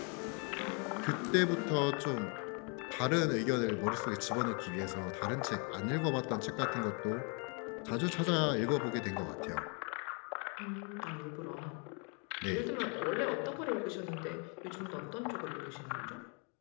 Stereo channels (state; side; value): quieter; right; 35.8 dB